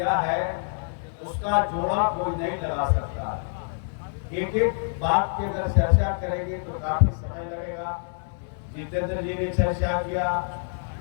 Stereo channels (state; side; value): silent; right; digital silence